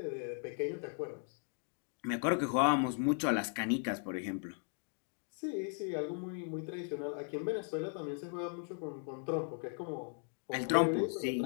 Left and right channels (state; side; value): silent; right; 53 dB below the other